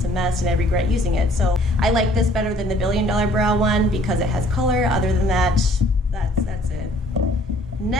a mess, and I regret using it. So I like this better than the Billion Dollar Brow one because it has color. Other than that, that's it.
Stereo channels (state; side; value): normal; both; correlation 0.58